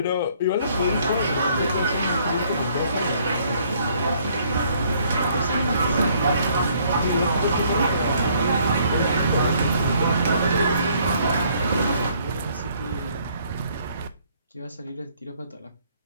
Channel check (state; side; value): inverted; both; correlation -0.64